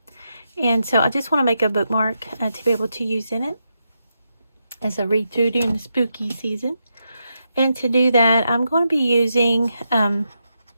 And so I just want to make a bookmark to be able to use in it as I read through during the spooky season. And to do that, I'm going to be using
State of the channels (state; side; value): inverted; both; correlation -0.85